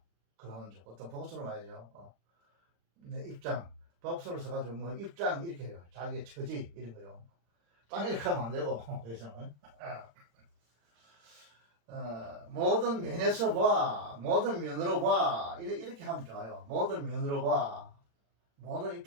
그라운드 어떤 복수로 말이죠. 내 입장 복수로 써가지고 뭐 입장 이렇게 해요. 자기의 처지 이런 거요. 땅 이렇게 하면 안 되고 여기서는 모든 면에서 봐 모든 면으로 봐 이렇게 하면 좋아요. 모든 면으로 봐 모든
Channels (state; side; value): late; left; 35 ms